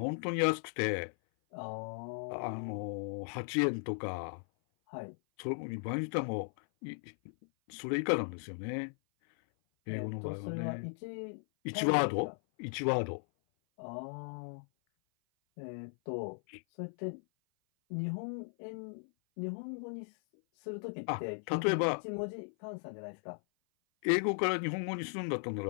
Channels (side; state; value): right; silent; 53 dB below the other